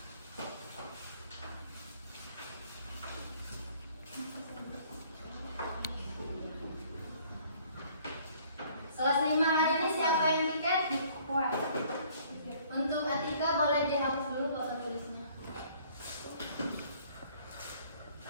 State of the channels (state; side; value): inverted; both; correlation -0.58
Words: Kelas 5 hari ini siapa yang tiket? Untuk Atika boleh dihapus dulu papan tulisnya.